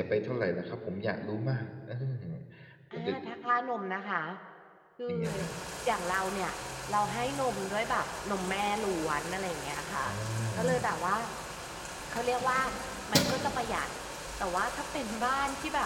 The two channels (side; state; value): both; identical; correlation 1.00